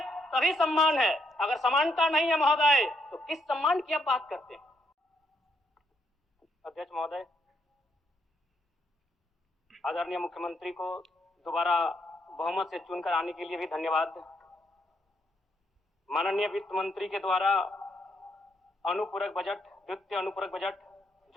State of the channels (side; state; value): both; normal; correlation 0.75